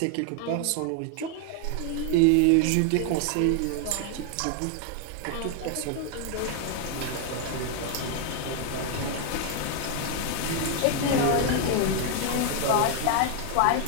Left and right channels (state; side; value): different; both; correlation 0.00